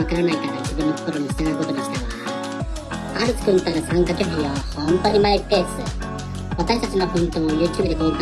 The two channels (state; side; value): identical; both; correlation 1.00